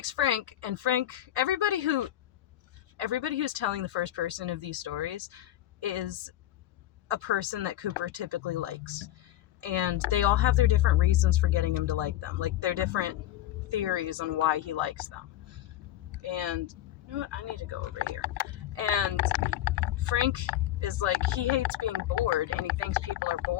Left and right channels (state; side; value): quieter; right; 13.3 dB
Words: Frank, and Frank, everybody who's telling the first person of these stories is a person that Cooper typically likes. And they all have their different reasons for getting him to like them. Like, their different theories on why he likes them. And, you know what? I need to go over here. And Frank is like, he hates being bored, and he thinks people are